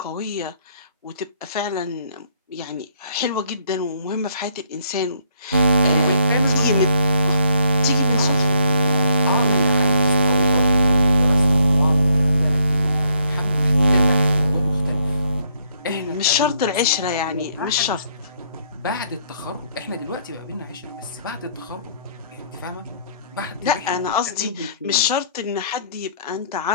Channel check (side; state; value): both; inverted; correlation -0.69